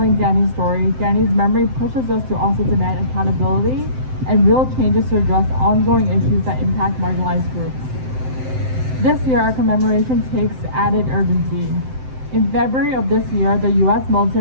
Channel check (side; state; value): left; late; 7.8 ms